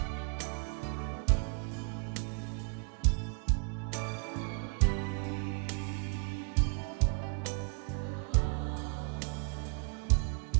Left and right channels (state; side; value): quieter; left; 34.2 dB